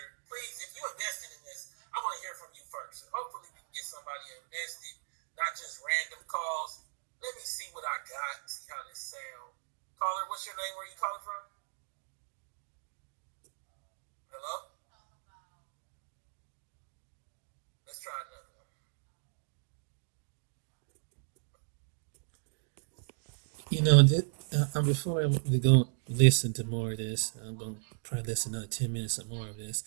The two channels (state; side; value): silent; left; digital silence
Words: Please, if you invested in this, I want to hear from you first. Hopefully we can get somebody invested, not just random calls. Let me see what I got, see how this sounds. Caller, what's your name? Where are you calling from? Hello? Let's try another one. Before we go listen to more of this, I'm going to probably listen another 10 minutes or more of this.